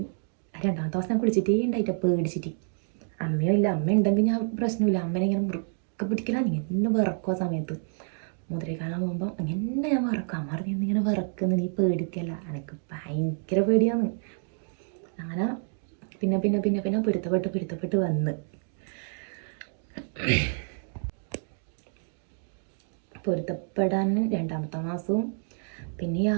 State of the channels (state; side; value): silent; left; 57 dB below the other